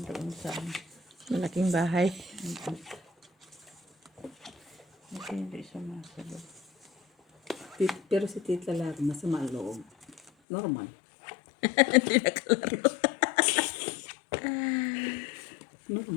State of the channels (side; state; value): right; drops out; at 10.3 s